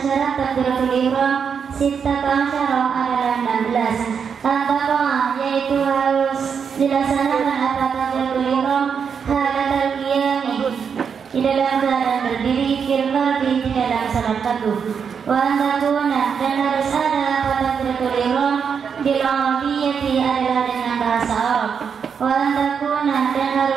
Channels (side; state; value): left; quieter; 6.7 dB